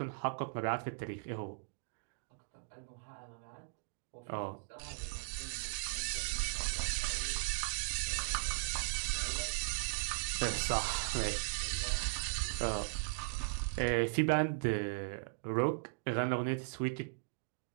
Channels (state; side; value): silent; left; digital silence